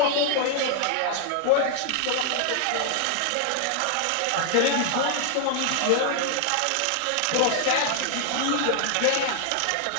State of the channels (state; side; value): different; both; correlation 0.00